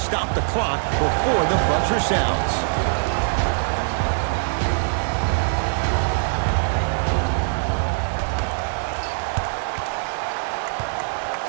the clock before the buzzer sounds.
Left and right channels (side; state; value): left; silent; 63 dB below the other